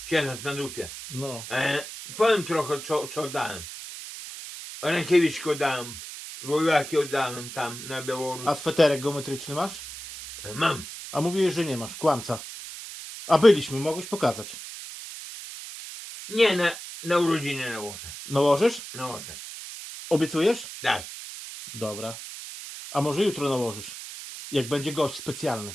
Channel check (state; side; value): noise; right; hiss, 11 dB below the sound